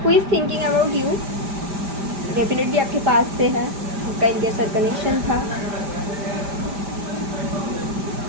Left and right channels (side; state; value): left; late; 5.1 ms